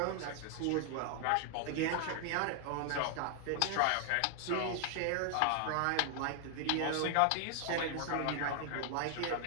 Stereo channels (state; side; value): different; both; correlation 0.00